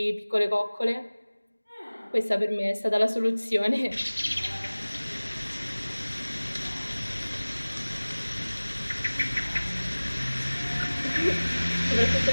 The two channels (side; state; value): both; inverted; correlation -1.00